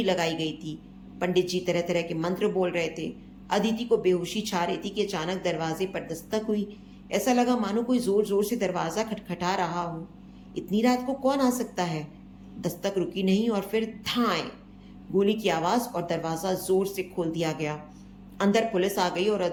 लगाई गई थी। पंडित जी तरह तरह के मंत्र बोल रहे थे। अदिति को बेहोशी छा रही थी कि अचानक दरवाजे पर दस्तक हुई। ऐसा लगा मानो कोई जोर जोर से दरवाजा खटखटा रहा हो। इतनी रात को कौन आ सकता है? दस्तक रुकी नहीं और फिर धाएं, गोली की आवाज और दरवाजा जोर से खोल दिया गया। अंदर पुलिस आ गई और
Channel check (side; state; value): both; identical; correlation 1.00